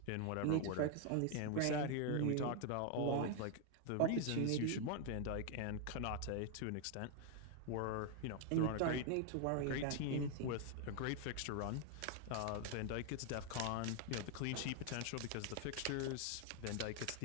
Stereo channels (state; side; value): different; both; correlation 0.00